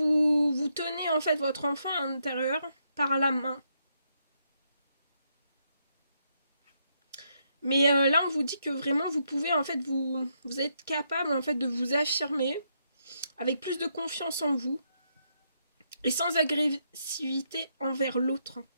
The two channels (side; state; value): both; inverted; correlation -0.78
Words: tenez en fait votre enfant intérieur par la main. Mais là, on vous dit que vraiment, vous pouvez en fait, vous êtes capable en fait de vous affirmer avec plus de confiance en vous et sans agressivité envers l'autre.